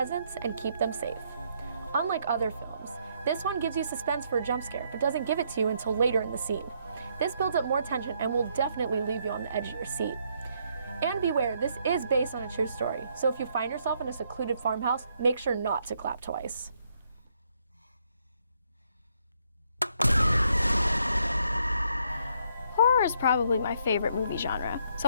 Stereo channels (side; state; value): both; inverted; correlation -0.72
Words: and keep them safe. Unlike other films, this one gives you suspense for a jump scare, but doesn't give it to you until later in the scene. This builds up more tension and will definitely leave you on the edge of your seat. And beware, this is based on a true story, so if you find yourself in a secluded farmhouse, make sure not to clap twice. Horror is probably my favorite movie genre, so